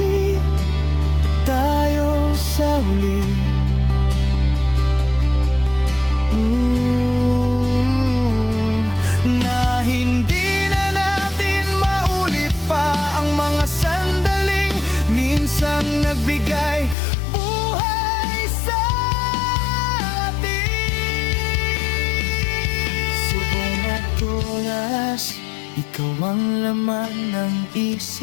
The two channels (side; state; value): right; drops out; at 16.9 s